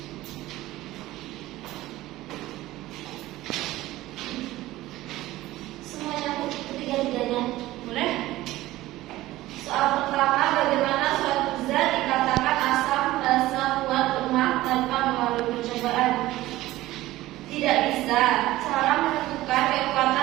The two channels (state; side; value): quieter; left; 16.7 dB